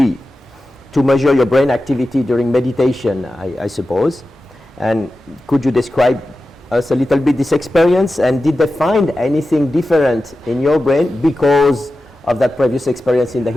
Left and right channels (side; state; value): both; normal; correlation 0.93